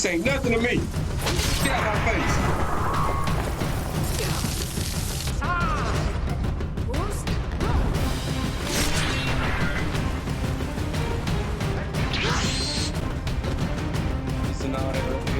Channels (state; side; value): identical; both; correlation 1.00